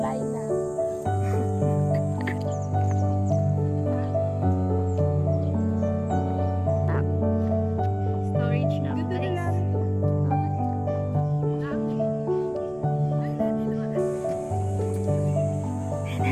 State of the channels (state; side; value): identical; both; correlation 1.00